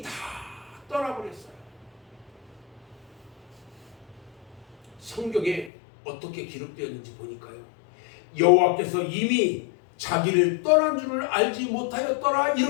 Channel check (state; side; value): drops out; right; at 5.7 s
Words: 다 떠나버렸어요. 성경에 어떻게 기록되었는지 보니까요, 여호와께서 이미 자기를 떠난 줄을 알지 못하였더라